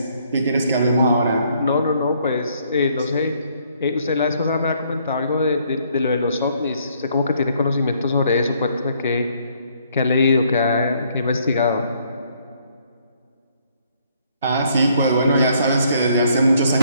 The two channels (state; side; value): inverted; both; correlation -0.67